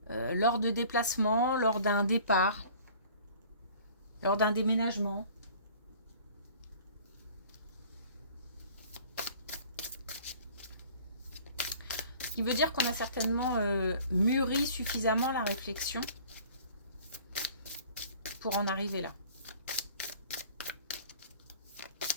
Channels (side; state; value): both; inverted; correlation -0.49